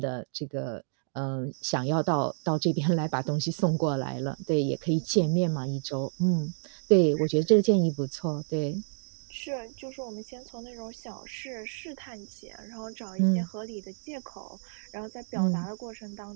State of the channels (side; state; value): left; silent; digital silence